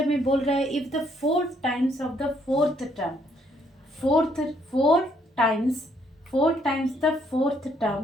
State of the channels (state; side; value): normal; both; correlation 0.69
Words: में बोल रहा है if the 4 times of the fourth term, four times the fourth term